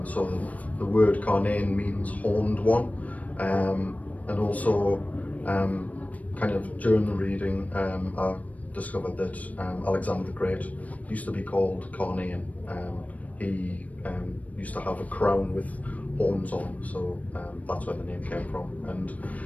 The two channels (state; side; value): late; right; 0.070 ms